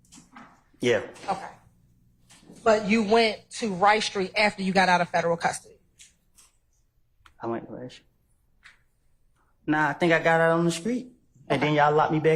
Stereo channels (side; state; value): both; identical; correlation 1.00